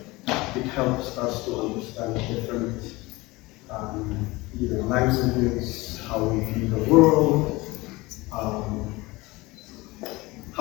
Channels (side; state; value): right; quieter; 21.9 dB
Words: It helps us to understand different languages, how we view the world,